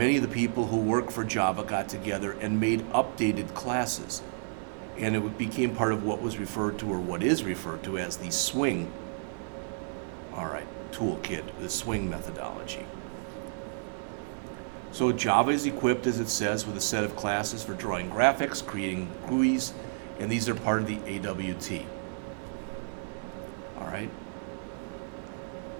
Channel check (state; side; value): silent; left; digital silence